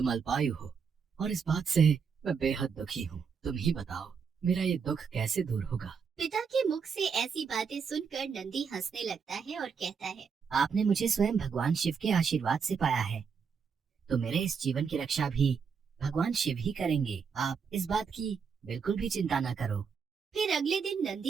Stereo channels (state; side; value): quieter; left; 6.1 dB